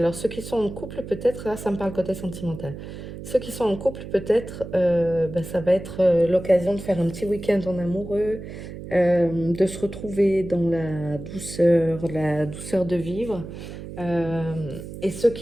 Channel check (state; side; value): noise; right; hum, 11 dB below the sound